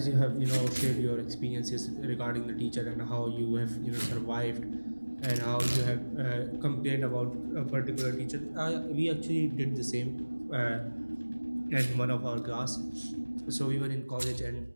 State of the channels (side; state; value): both; inverted; correlation -1.00